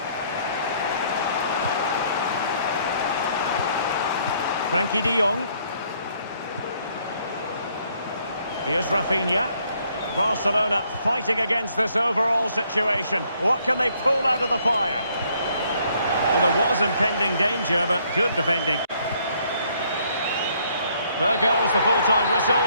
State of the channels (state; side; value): inverted; both; correlation -0.67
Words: Frankie de Jong. Here's Rafinha. Barcelona fighting against this overall situation. What can they pull out of the fire? Well, there was impending danger, but good defending. There goes the full-time whistle,